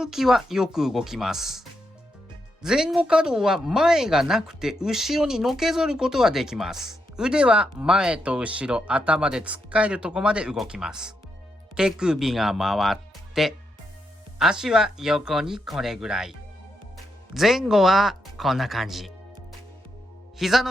きはよく動きます。前後可動は前がなくて後ろにのけぞることができます。腕は前と後ろ、頭でつっかえるとこまで動きます。手首が回って、足は横にこれぐらい。前後はこんな感じ。膝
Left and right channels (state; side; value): normal; both; correlation 0.82